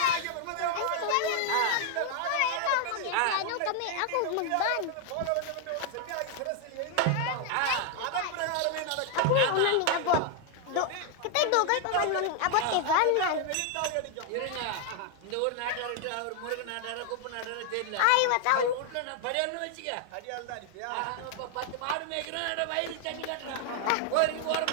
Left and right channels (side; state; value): both; different; correlation 0.00